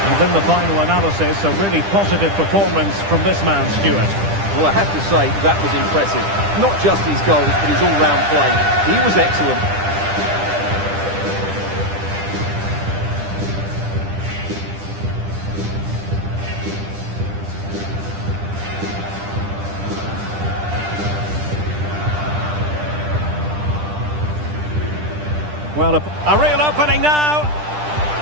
And in the final analysis, a really positive performance from this man, Stuart. Well, I have to say, that was impressive. Not just his goals, but his all-round play. He was excellent. Well, a real opening now.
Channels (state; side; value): late; left; 10 ms